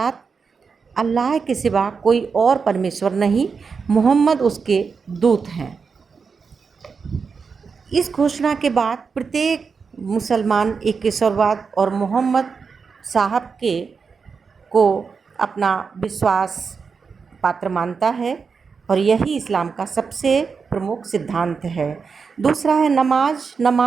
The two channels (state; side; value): quieter; left; 5.4 dB